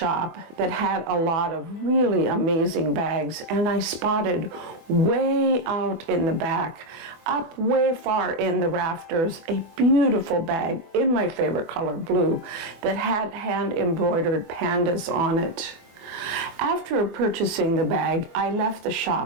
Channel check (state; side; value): late; left; 24 ms